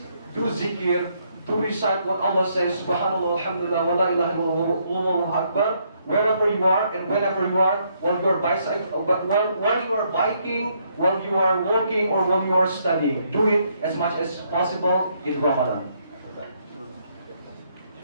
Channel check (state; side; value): inverted; both; correlation -0.72